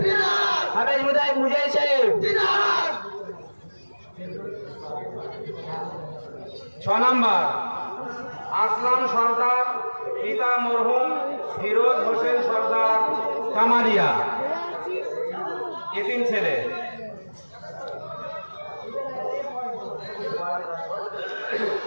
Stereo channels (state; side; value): inverted; both; correlation -1.00